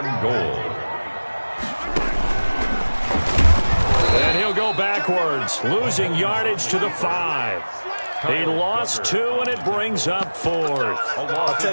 goal. And he'll go backwards, losing yardage to the 5. He lost 2, and it brings up 4th. I'll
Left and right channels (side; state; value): both; inverted; correlation -1.00